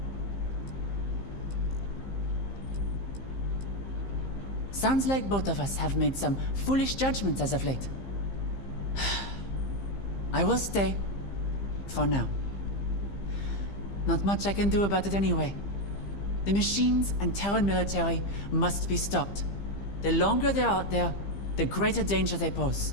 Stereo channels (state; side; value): late; right; 15 ms